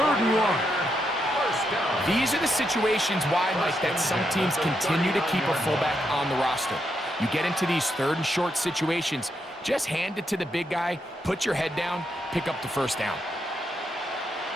and 1. These are the situations why, Mike, that some teams continue to keep a fullback on the roster. You get into these 3rd and short situations, just hand it to the big guy, put your head down, pick up the first down.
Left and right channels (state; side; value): normal; both; correlation 0.81